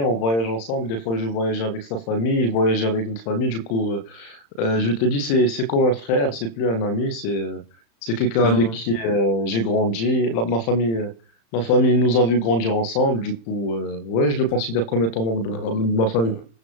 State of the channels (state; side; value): late; right; 35 ms